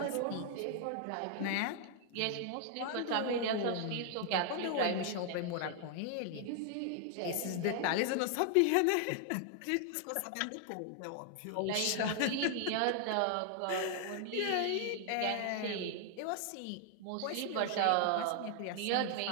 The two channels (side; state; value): both; different; correlation 0.00